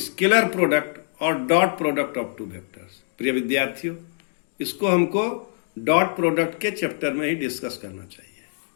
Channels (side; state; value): right; silent; 62 dB below the other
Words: product और dot product of two vectors. प्रिय विद्यार्थियों, इसको हमको dot product के chapter में ही discuss करना चाहिए.